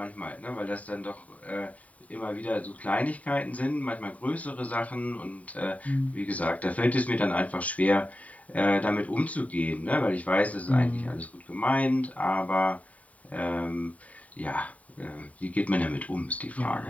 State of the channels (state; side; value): late; right; 0.069 ms